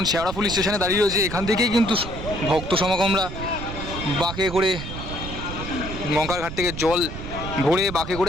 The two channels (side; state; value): right; noise; rumble, 8 dB below the sound